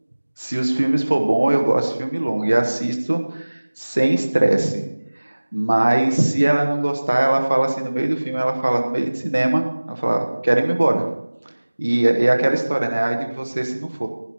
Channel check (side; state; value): both; inverted; correlation -1.00